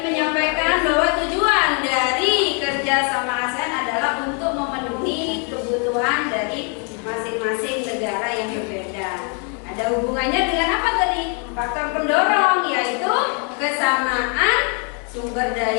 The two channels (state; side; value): quieter; right; 38.7 dB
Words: bahwa tujuan dari kerjasama ASEAN adalah untuk memenuhi kebutuhan dari masing-masing negara yang berbeda. Ada hubungannya dengan apa tadi? Faktor pendorong, yaitu kesamaan sumber